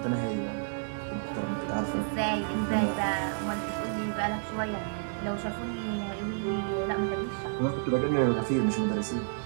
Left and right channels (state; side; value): silent; left; digital silence